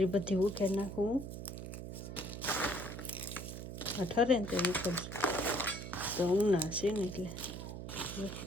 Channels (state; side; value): noise; right; hum, 8 dB below the sound